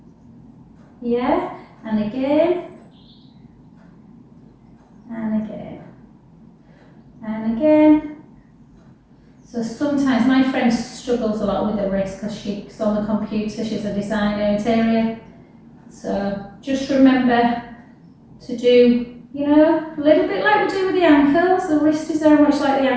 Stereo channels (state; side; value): identical; both; correlation 1.00